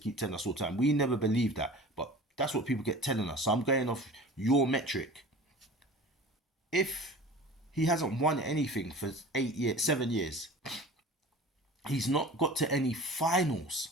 telling us all the time. We never believed that, but that's what people get telling us. So I'm going off your metric. If he hasn't won anything for 7 years, he's not got to any finals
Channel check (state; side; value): normal; both; correlation 0.40